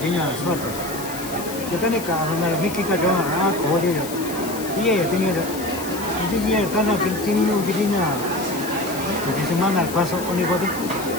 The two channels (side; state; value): left; noise; hiss, 11 dB below the sound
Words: nya suatu. Kita ni kan orang mikir kita jangan kau dia. Iya ya sini ada. Jadi iya karena sini ni begini nya. Jadi semana pasok ni kau tu.